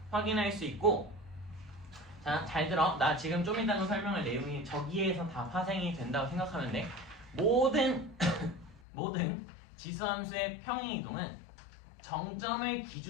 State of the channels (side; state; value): right; drops out; at 8.8 s